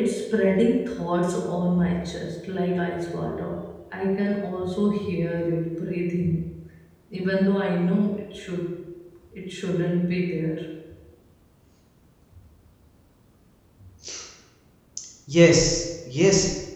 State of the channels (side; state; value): both; identical; correlation 1.00